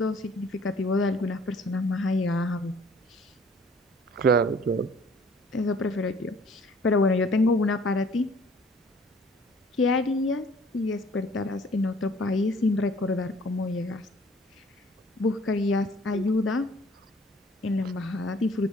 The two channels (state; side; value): normal; both; correlation 0.55